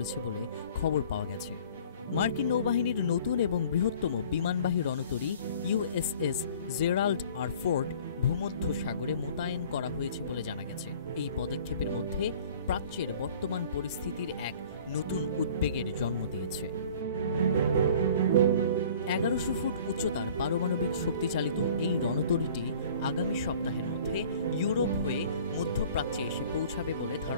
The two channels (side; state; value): both; inverted; correlation -0.50